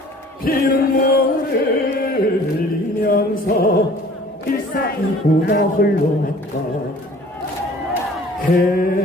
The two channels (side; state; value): both; normal; correlation 0.50